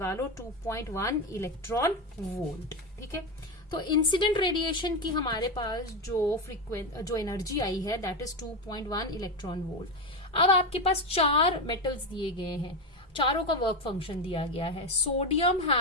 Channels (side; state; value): both; normal; correlation 0.13